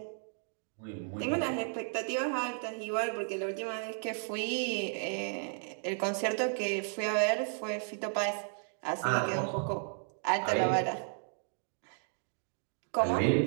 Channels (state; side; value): silent; left; 55 dB below the other